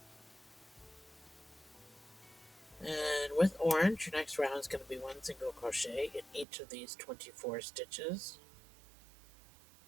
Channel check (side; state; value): left; drops out; at 6.5 s